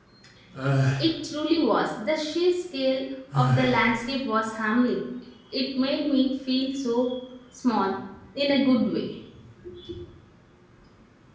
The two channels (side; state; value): both; identical; correlation 1.00